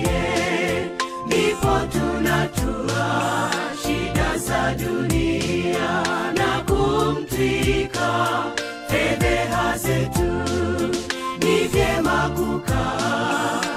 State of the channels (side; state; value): both; identical; correlation 1.00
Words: ndipo tunatua shida za dunia na kumtwika fedheha zetu. Ni vyema kukaa